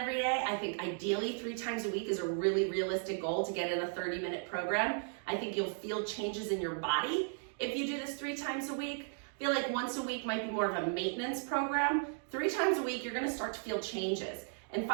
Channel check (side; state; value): left; silent; 54 dB below the other